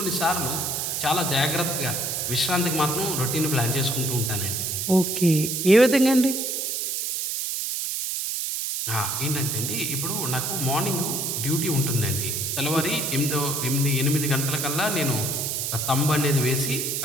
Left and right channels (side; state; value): right; noise; hiss, 1 dB below the sound